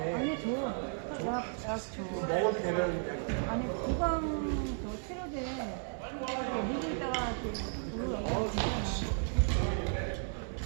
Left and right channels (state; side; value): silent; left; 55 dB below the other